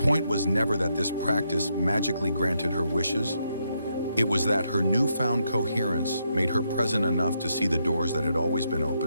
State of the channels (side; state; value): both; inverted; correlation -0.79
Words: was never that this practice magically granted her wishes. It was that her newfound coherence made her present enough to see the doors that had always been